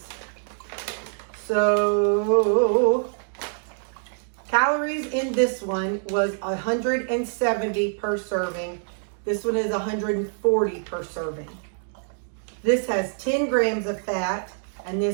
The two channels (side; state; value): left; silent; digital silence